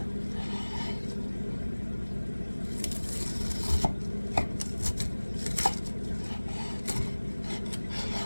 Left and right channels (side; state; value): both; inverted; correlation -1.00